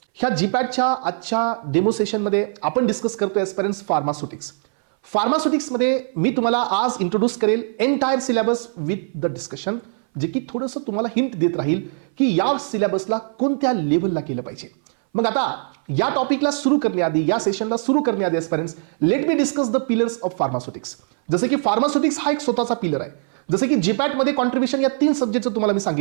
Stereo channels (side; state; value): left; silent; 61 dB below the other